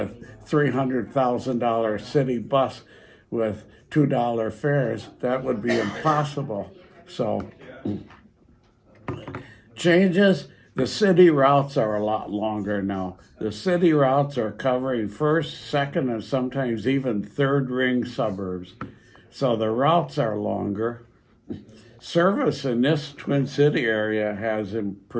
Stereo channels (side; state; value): both; identical; correlation 1.00